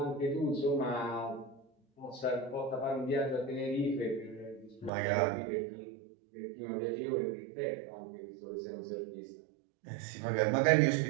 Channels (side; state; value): left; drops out; at 4.9 s